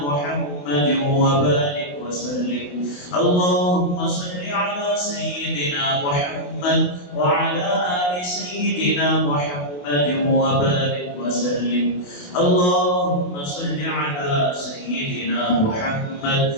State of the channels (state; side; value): late; right; 28 ms